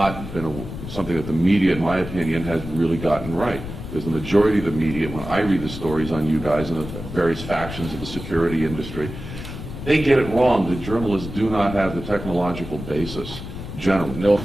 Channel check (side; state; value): left; noise; rumble, 10 dB below the sound